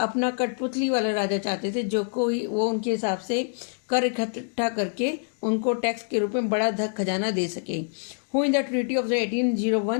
कठपुतली वाला राजा चाहते थे जो कोई वो उनके हिसाब से कर इकट्ठा करके उनको टैक्स के रूप में बड़ा धन खजाना दे सके. Who in the treaty of the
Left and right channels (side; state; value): right; silent; digital silence